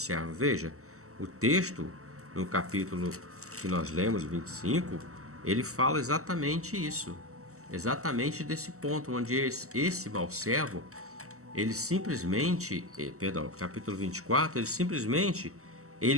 Veja, o texto, no capítulo que nós lemos, 25, ele fala exatamente isso. Exatamente desse ponto, onde esse mau servo, ele simplesmente, capítulo 24,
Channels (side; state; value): left; late; 0.64 ms